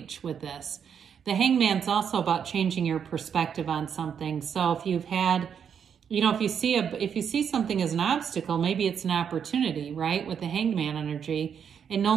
with this. The Hangman's also about changing your perspective on something. So if you've had, you know, if you see something as an obstacle, maybe it's an opportunity, right? With the Hangman energy, it no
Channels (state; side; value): quieter; left; 7.7 dB